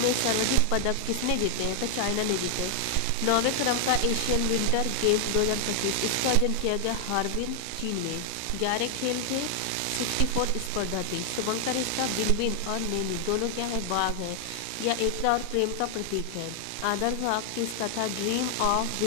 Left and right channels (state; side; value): different; both; correlation 0.00